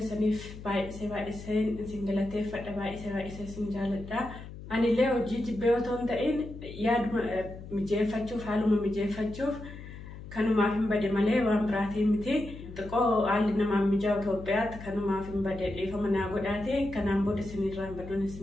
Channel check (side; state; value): left; noise; hum, 13 dB below the sound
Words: باي سين سنجلته فدا باي سنجالتا أنا اللي أوجد بيوتون تين ياد مجيفتشوف حالهم مجيفتشوف كانوا ما فين بدي ملء وامبراتي متي تقو علينا ما مجاو توبيات كانوا ما فين بدي فمن أقولاتي كان بود سنين رام بدون